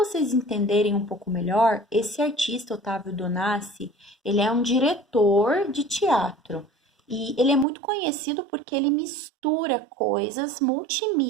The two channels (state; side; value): drops out; left; at 7.7 s